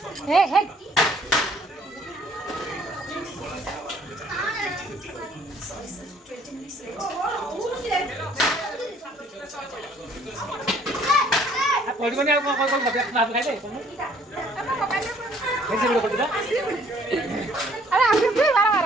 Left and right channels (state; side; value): normal; both; correlation 0.60